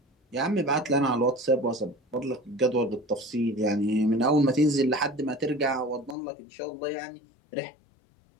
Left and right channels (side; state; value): right; drops out; at 6.2 s